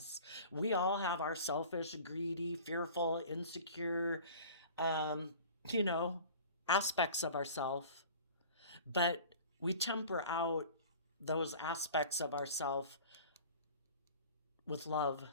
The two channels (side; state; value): both; inverted; correlation -0.42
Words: We all have our selfish, greedy, fearful, insecure, um, you know, aspects of ourself. But we temper out those aspects of ourself with love